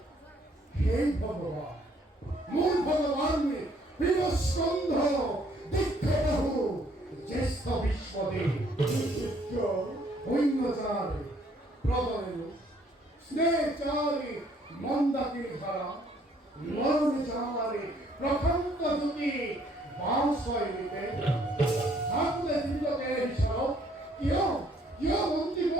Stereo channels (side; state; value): both; normal; correlation 0.64